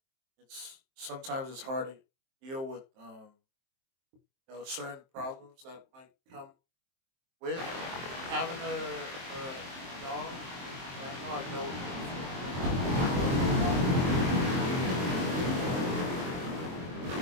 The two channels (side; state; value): left; late; 23 ms